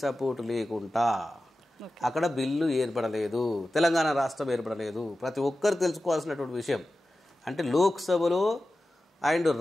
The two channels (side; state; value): both; normal; correlation 0.94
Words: సపోర్ట్ లేకుండా అక్కడ బిల్లు ఏర్పడలేదు, తెలంగాణ రాష్ట్రం ఏర్పడలేదు. ప్రతి ఒక్కరు తెలుసుకోవాల్సినటువంటి విషయం. అంటే లోక్సభలో అండ్